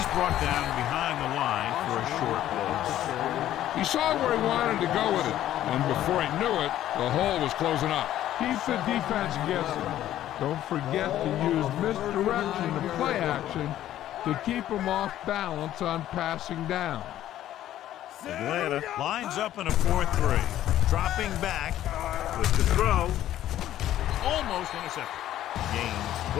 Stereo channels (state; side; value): quieter; right; 12.6 dB